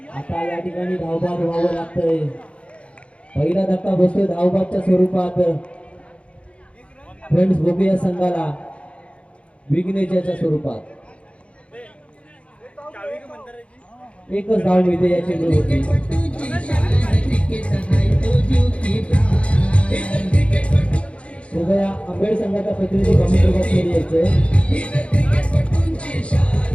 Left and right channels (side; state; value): right; late; 0.061 ms